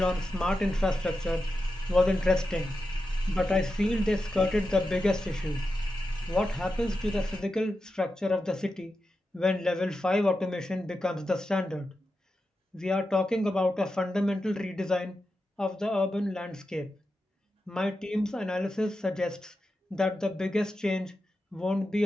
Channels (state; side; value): normal; both; correlation 0.90